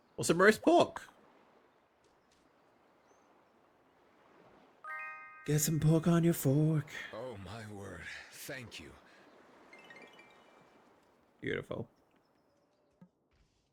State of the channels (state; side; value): identical; both; correlation 1.00